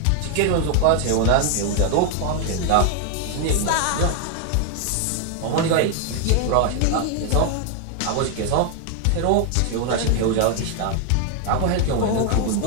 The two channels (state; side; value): different; both; correlation 0.00